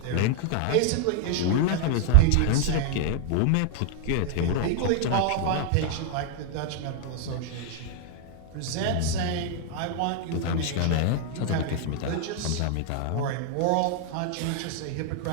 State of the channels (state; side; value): different; both; correlation 0.00